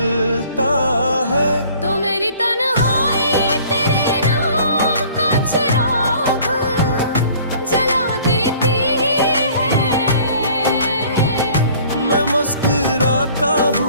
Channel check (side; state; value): both; inverted; correlation -0.52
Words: है तो मेरी तन्हाई तेरे नाम का चिराग जला देती है। मैं मुस्कुराता